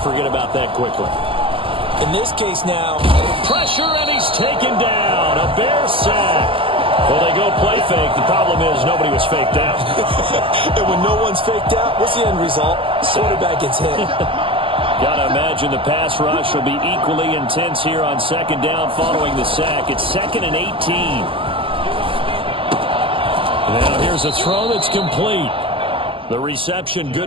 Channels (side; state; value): left; late; 0.26 ms